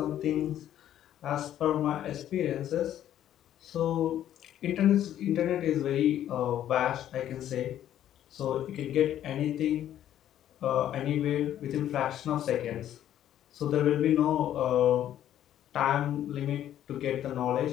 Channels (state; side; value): quieter; right; 11.4 dB